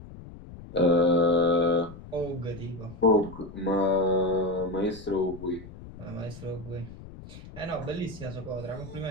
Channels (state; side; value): noise; left; rumble, 15 dB below the sound